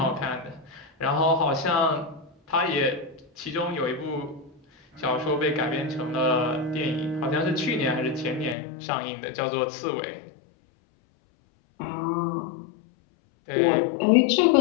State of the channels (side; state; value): right; drops out; at 8.6 s